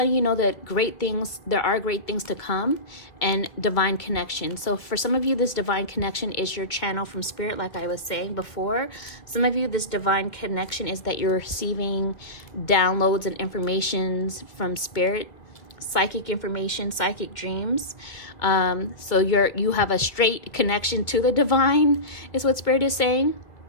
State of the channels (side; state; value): right; late; 2.2 ms